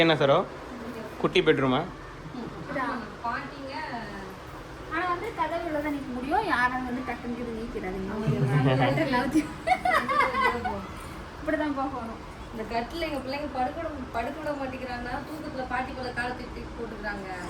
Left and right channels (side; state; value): both; identical; correlation 1.00